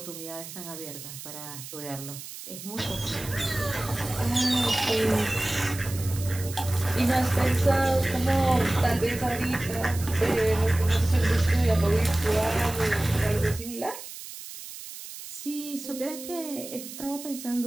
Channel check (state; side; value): noise; right; hiss, 12 dB below the sound